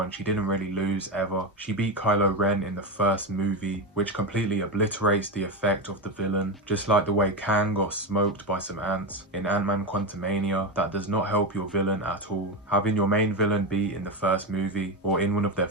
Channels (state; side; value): normal; both; correlation 0.16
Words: She didn't really lose ever. She beat Kylo Ren in the first movie, which completely obliterates the effect of the villain. Just like the way Kang got smoked by some ants in Ant-Man Quantumania, that does not help your villain at all. Having your main villain be in the first movie or in one of their